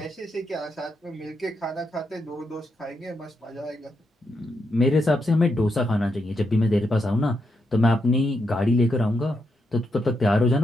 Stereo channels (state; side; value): normal; both; correlation 0.82